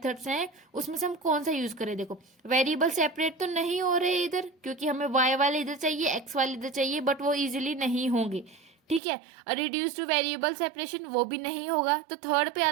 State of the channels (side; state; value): left; drops out; at 9.0 s